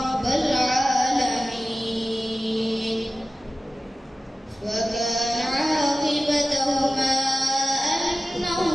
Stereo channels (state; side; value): normal; both; correlation 0.96